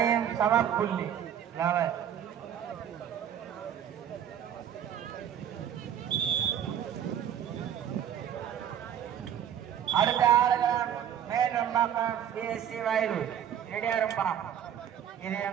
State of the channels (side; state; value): left; quieter; 9.7 dB